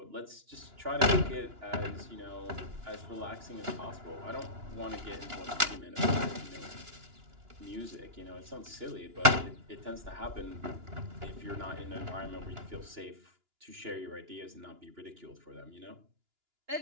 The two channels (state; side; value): late; left; 2.9 ms